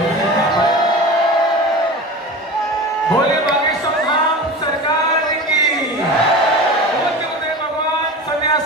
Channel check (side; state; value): both; normal; correlation 0.32